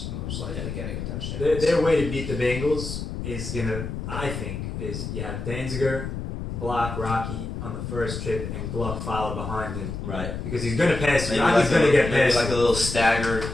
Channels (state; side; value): noise; left; rumble, 6 dB below the sound